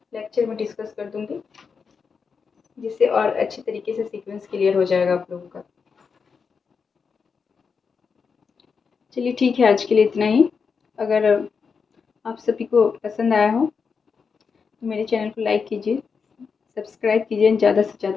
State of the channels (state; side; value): quieter; right; 5.6 dB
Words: लेक्चर में डिस्कस कर दूंगी, जिससे और अच्छे तरीके से सीक्वेंस क्लियर हो जाएगा आप लोगों का। चलिए ठीक है, आज के लिए इतना ही। अगर आप सभी को पसंद आया हो तो मेरे चैनल को लाइक कीजिए, सब्सक्राइब कीजिए, ज़्यादा से